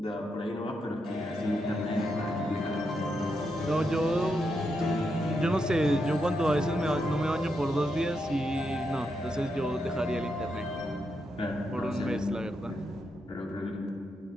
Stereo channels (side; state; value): both; normal; correlation 0.83